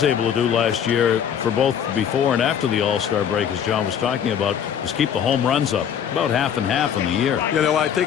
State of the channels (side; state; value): right; quieter; 8.5 dB